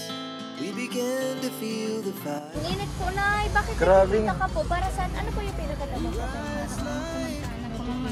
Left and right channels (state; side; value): identical; both; correlation 1.00